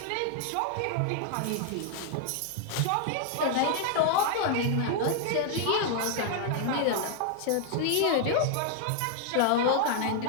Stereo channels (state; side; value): different; both; correlation 0.00